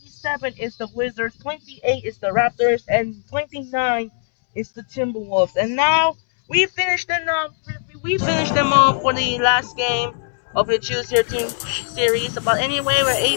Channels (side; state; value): right; silent; 66 dB below the other